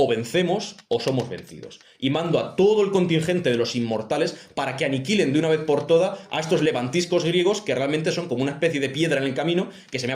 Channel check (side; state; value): both; identical; correlation 1.00